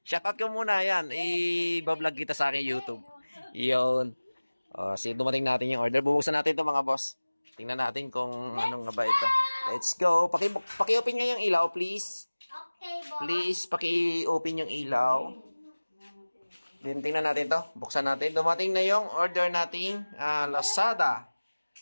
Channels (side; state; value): both; inverted; correlation -1.00